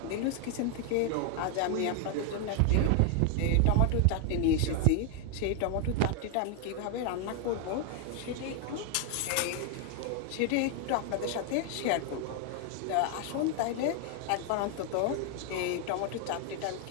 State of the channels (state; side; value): different; both; correlation 0.01